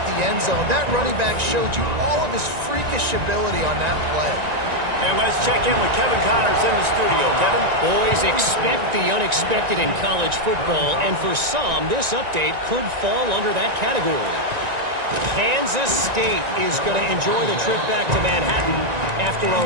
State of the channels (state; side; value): late; left; 1.9 ms